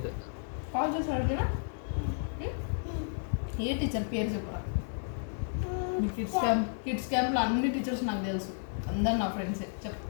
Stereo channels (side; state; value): right; silent; digital silence